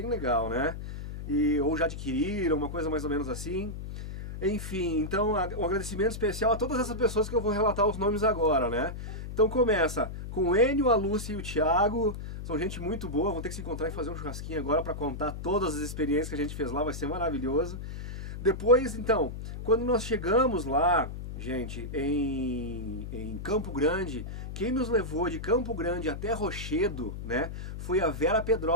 legal, né, ou já adquiriram, uma coisa mais ou menos assim. Enfim, então um agradecimento especial a todas essas pessoas que eu vou relatar os nomes agora, né? Então começa com o Enio, a Lúcia e o Thiago, são gente muito boa, vão ter que se encontrar e fazer um churrasquinho agora para contar todas as experiências que a gente fez lá, vai ser maravilhoso. Depois, então, quando nós chegamos lá, gente, em Campo Grande, quem nos levou de Campo Grande até Rochedo, né, foi a Vera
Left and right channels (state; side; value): noise; left; hum, 8 dB below the sound